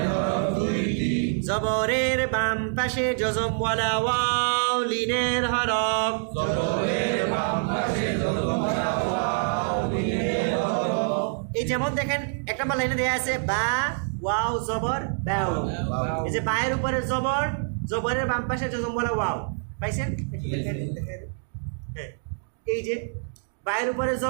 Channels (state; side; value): silent; left; digital silence